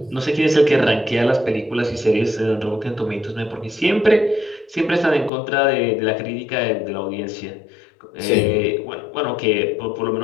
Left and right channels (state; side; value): drops out; right; at 5.3 s